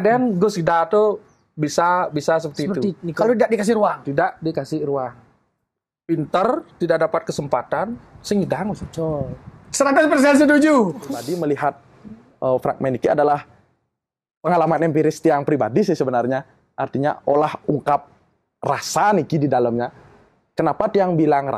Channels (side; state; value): both; identical; correlation 1.00